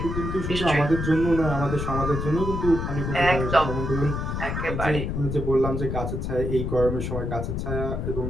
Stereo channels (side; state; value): left; noise; rumble, 3 dB below the sound